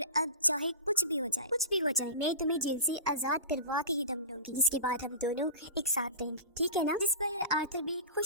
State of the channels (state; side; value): inverted; both; correlation -0.30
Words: अब चाहे कुछ भी हो जाए मैं तुम्हें जेल से आजाद करवा के ही दम लूंगी, जिसके बाद हम दोनों एक साथ रहेंगे, ठीक है ना। जिस पर आर्थर भी